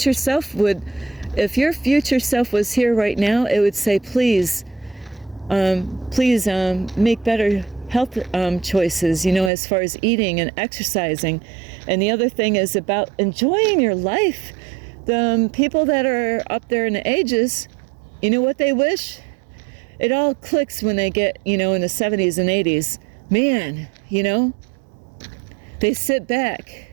self would, if your future self was here right now, it would say, please make better health choices, you know, as far as eating and exercising. And the other thing is about enjoying your life. The people that are up there in the ages, you know what they wish? It all clicks when they get, you know, in the 70s and 80s. Man, you know, they sit back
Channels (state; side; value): drops out; left; at 9.5 s